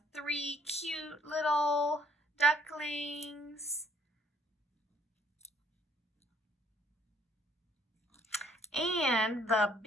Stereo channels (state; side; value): normal; both; correlation 0.64